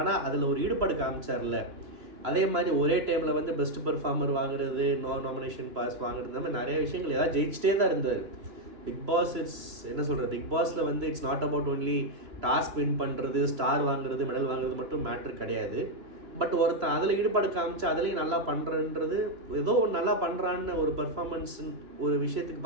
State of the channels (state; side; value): late; left; 3.0 ms